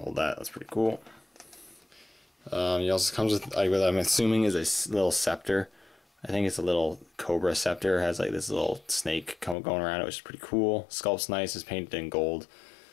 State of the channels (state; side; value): drops out; right; at 9.6 s